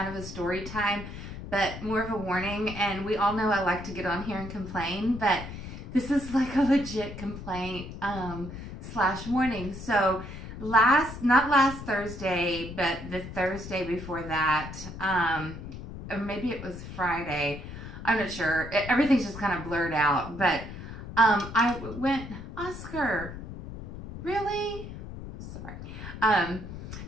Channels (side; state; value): left; noise; rumble, 10 dB below the sound